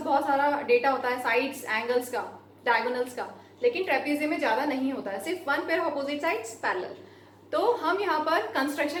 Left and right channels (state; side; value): identical; both; correlation 1.00